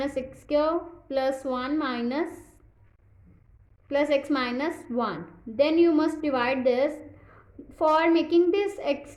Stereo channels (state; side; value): identical; both; correlation 1.00